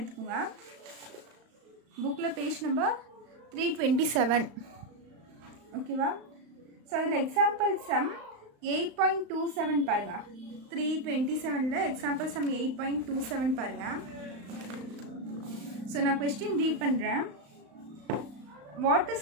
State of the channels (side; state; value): left; late; 35 ms